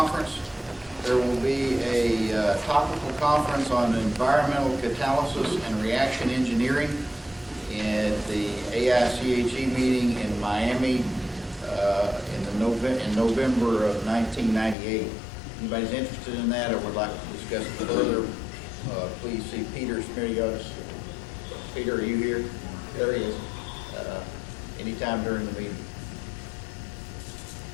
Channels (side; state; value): right; drops out; at 14.8 s